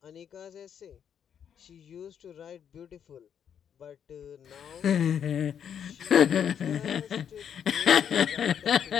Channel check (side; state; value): right; quieter; 8.5 dB